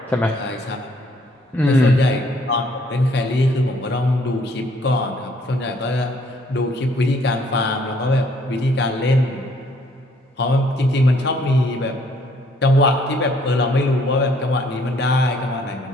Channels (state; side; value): normal; both; correlation 0.64